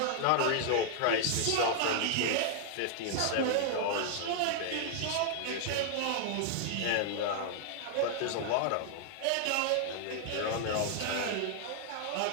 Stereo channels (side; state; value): both; different; correlation -0.01